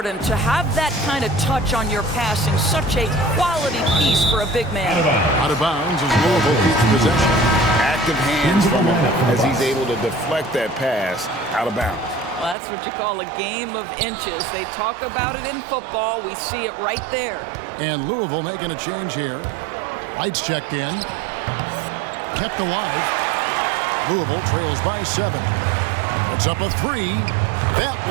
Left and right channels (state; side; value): drops out; left; at 12.6 s